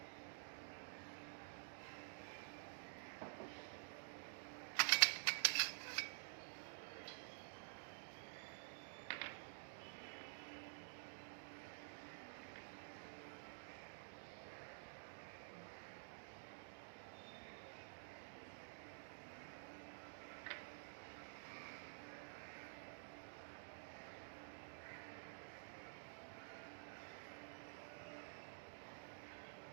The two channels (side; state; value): left; silent; digital silence